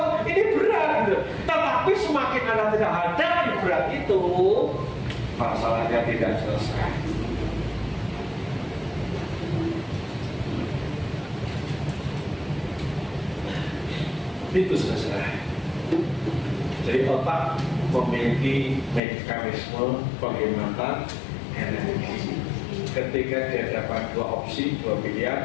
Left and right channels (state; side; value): drops out; right; at 19.0 s